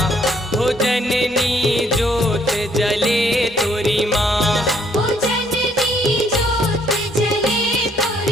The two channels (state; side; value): normal; both; correlation 0.66